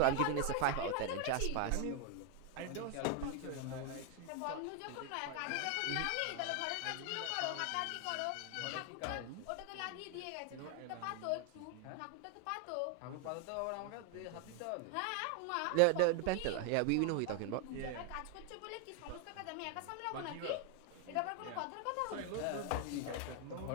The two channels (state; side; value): different; both; correlation 0.01